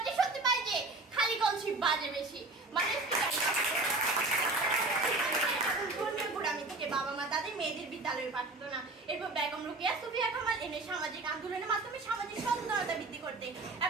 সত্যি পাই যে খালি কলসি বাজে বেশি। মাননীয় স্পিকার, ধর্মীয় থেকে বাবা মা তাদের মেয়েদের বিদ্যালয়ে পাঠাতো না। এরপর বেগম রোকেয়া সুফিয়া কামাল এনে সামাজিক আন্দোলনের মাধ্যমে সামাজিক সচেতনতা বৃদ্ধি করতে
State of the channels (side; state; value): left; quieter; 3.2 dB